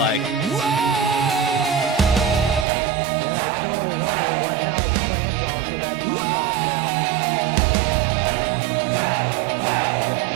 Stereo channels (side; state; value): left; drops out; at 2.7 s